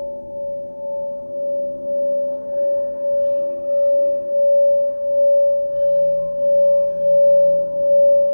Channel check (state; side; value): inverted; both; correlation -1.00